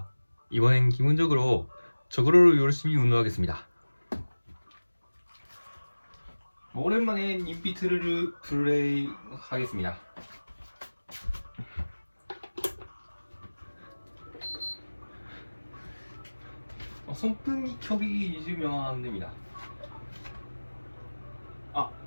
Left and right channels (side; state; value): both; inverted; correlation -1.00